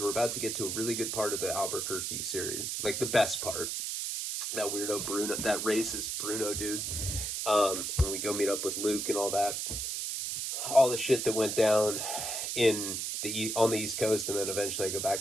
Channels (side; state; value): right; noise; hiss, 2 dB below the sound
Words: about to get to a really good part of the Albuquerque series. Like the best part. That weirdo Bruno, that racist Bruno dude. When we go meet up with Luke and all that. All the shit that went down on the East Coast, and then eventually I go